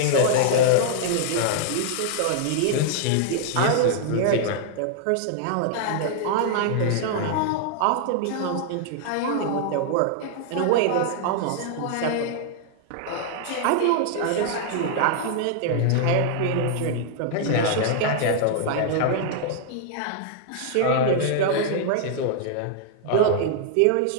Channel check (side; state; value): both; different; correlation -0.01